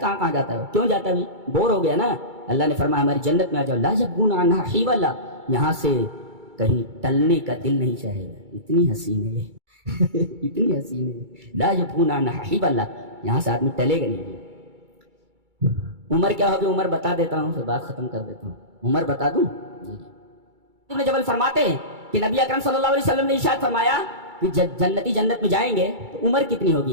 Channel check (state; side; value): late; left; 2.3 ms